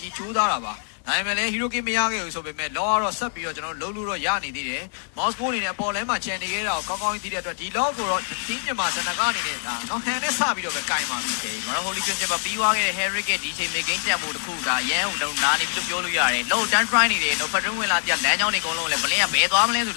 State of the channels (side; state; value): right; silent; 62 dB below the other